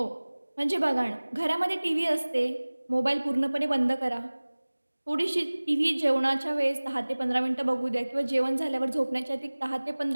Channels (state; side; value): inverted; both; correlation -1.00